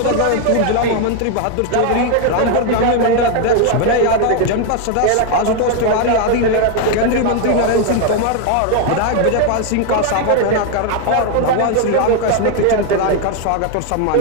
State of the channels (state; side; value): different; both; correlation 0.01